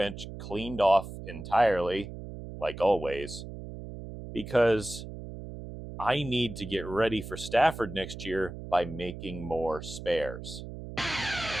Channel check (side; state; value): right; noise; hum, 10 dB below the sound